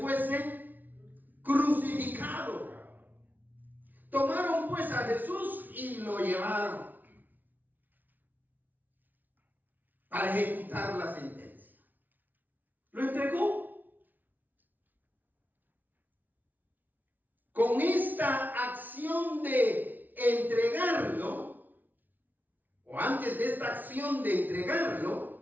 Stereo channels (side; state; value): left; late; 0.083 ms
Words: crucificado. Tomaron pues a Jesús y lo llevaron para ejecutar la sentencia. Lo entregó. Con esta acción de entregarlo, o antes de esta acción de